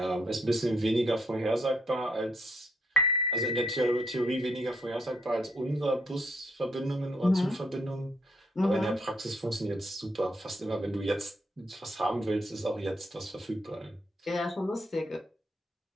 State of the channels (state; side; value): normal; both; correlation 0.73